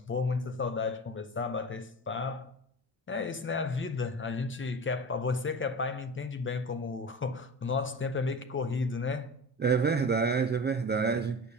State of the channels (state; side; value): normal; both; correlation 0.32